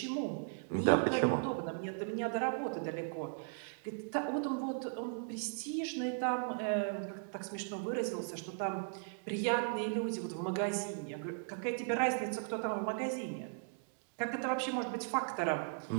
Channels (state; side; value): silent; left; digital silence